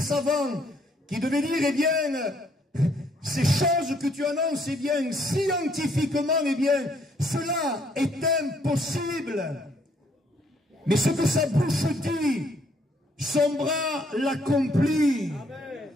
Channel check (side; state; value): both; normal; correlation 0.68